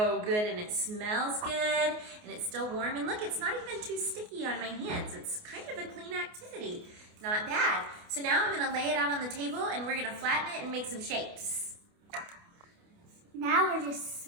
good and it smells good and it's still warm. And look, it's not even too sticky on my hands. It's kind of a clean activity. Not bad. So now I'm gonna lay it out on the table and we're gonna flatten it and make some shapes. Now we're just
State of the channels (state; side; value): late; left; 28 ms